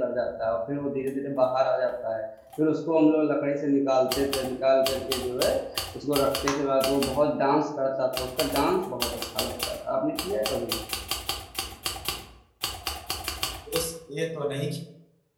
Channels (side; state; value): both; identical; correlation 1.00